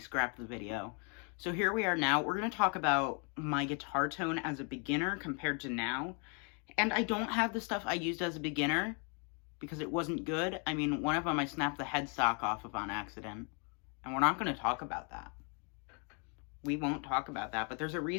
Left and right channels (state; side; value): quieter; right; 37.1 dB